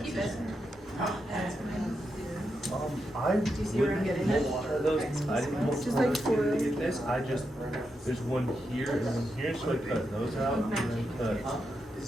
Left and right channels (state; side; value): normal; both; correlation 0.85